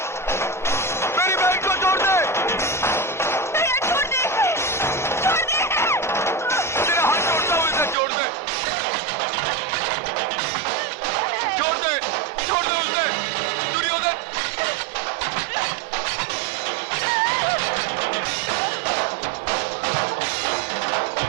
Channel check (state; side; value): drops out; left; at 8.0 s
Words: मेरी बहन को छोड़ दे। छोड़ दे, छोड़ दे। तेरा हाथ छोड़ता हूँ, इसे छोड़ दे, छोड़ दे, छोड़ दे उसे, दुर्योधन।